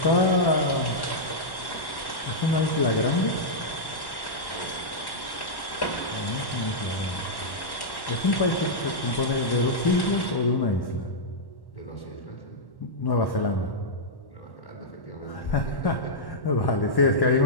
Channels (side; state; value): right; late; 1.1 ms